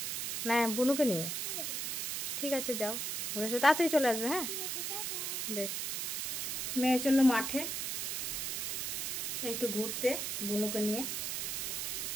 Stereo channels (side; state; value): right; noise; hiss, 1 dB below the sound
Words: না, বুনুকে নিয়ে? ঠিক আছে, যাও ঘুরে এসো, তাড়াতাড়ি চলে আসবে। হ্যাঁ বেশ। মেয়ে চললো মাঠে একটু ঘুরতে বুনুকে নিয়ে।